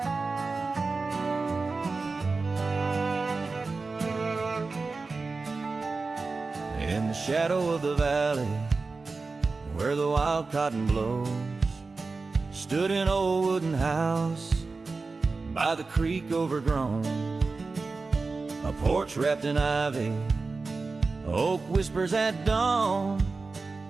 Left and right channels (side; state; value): left; quieter; 4.0 dB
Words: the shadow of the valley, where the wild cotton blows, stood an old wooden house by the creek overgrown. A porch wrapped in ivy, oak whispers at dawn.